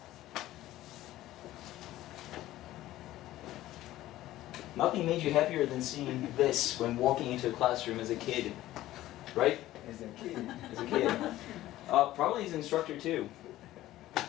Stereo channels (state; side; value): quieter; right; 15.1 dB